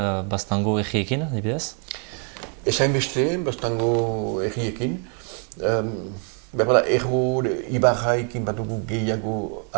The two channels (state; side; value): quieter; left; 38.9 dB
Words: Baztango egiekin adibidez? Ezain beste, Baztango egiekin. Berbala, Erro Ibarraikin batugu gehiago